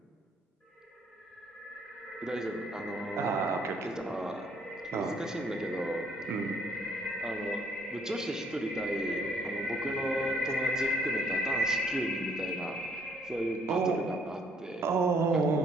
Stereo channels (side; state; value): both; normal; correlation 0.65